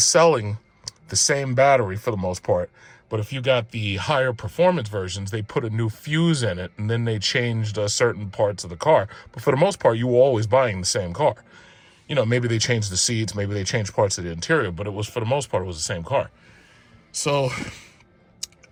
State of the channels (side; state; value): both; identical; correlation 1.00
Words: the same battery for the most part. But if you got the higher performance versions, they put a new fuse in it, and then they changed certain parts of the car. But for the most part, you were always buying the same car. You know, maybe they changed the seats, maybe they changed parts of the interior, but it was, for the most part, it was the same car. So